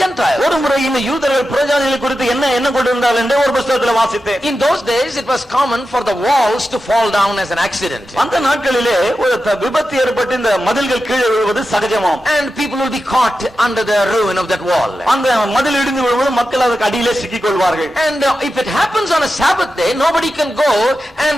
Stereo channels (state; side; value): normal; both; correlation 0.91